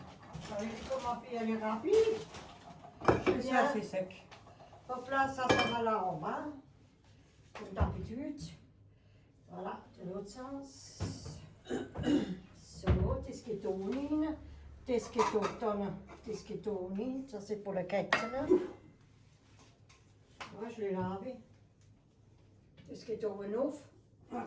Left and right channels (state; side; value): identical; both; correlation 1.00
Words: vous savez comment ma fille, elle est rapide. Et ça c'est sec. Hop là, ça va là en bas. Comme d'habitude. Voilà, de l'autre sens. So, das geht ohne. Das geht auch dann. Das geht ohne. Ça, c'est pour le Kätzchen. Moi, je l'ai lavé. Das geht oben auf.